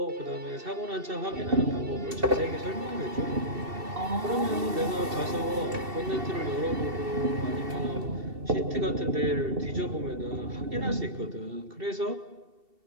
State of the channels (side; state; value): left; late; 2.7 ms